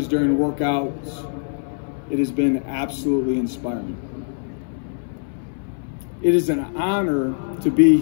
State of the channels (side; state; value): right; silent; 61 dB below the other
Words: during workouts, it has been absolutely inspiring. It is an honor to be